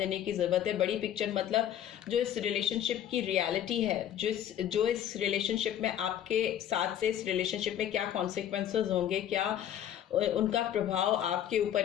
की ज़रूरत है। बड़ी पिक्चर मतलब जो इस रिलेशनशिप की रियलिटी है, जो इस रिलेशनशिप में आपके साथ से इस रिलेशनशिप में क्या कॉन्सिक्वेंसेस होंगे, क्या उनका प्रभाव आपके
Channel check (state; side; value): quieter; right; 10.6 dB